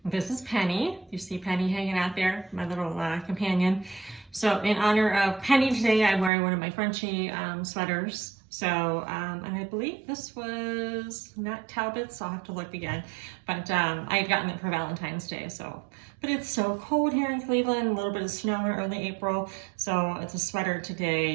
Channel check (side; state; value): left; drops out; at 6.3 s